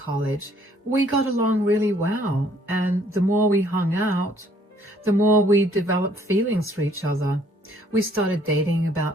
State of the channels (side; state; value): both; normal; correlation 0.62